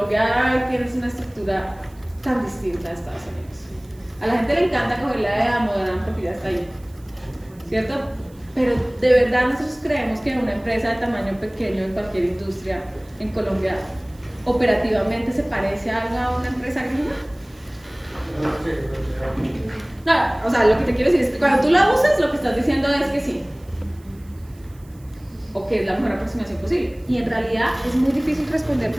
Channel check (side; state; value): right; noise; hiss, 29 dB below the sound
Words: tienes una estructura tan distinta a Estados Unidos. A la gente le encanta coger la de Damodaran porque ya está ahí, ¿cierto? Pero de verdad nosotros creemos que una empresa de tamaño pequeño en cualquier industria en Colombia operativamente se parece a una empresa gringa. No, o sea, lo que te quiero decir es que cuando tú la usas, lo que estás diciendo es que sí, o que es la mejor aproximación posible. Y en realidad es muy difícil